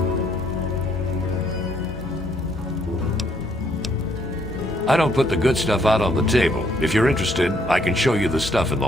I don't put the good stuff out on the table. If you're interested, I can show you the stuff in the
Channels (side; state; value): both; normal; correlation 0.69